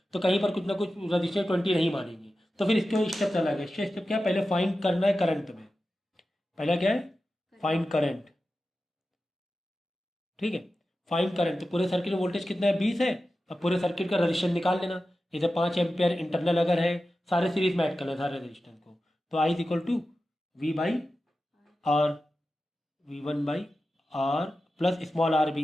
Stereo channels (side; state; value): both; normal; correlation 0.93